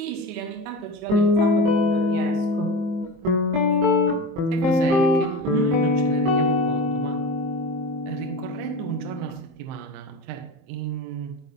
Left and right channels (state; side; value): late; left; 23 ms